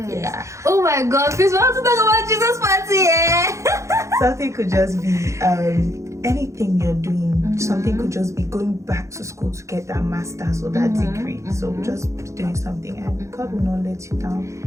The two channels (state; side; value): late; left; 0.14 ms